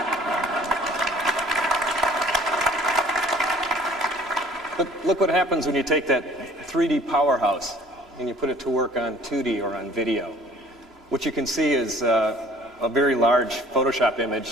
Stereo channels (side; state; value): both; normal; correlation 0.52